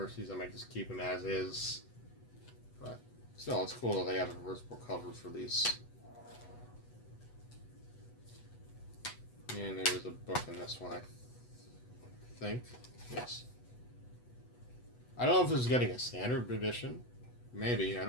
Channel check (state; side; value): late; right; 8.1 ms